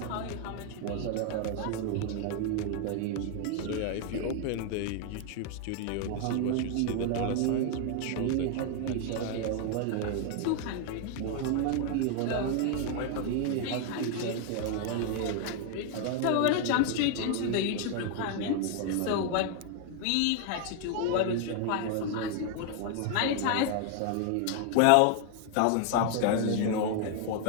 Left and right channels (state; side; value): different; both; correlation 0.00